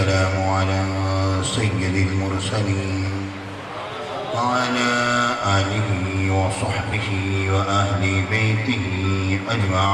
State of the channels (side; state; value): both; identical; correlation 1.00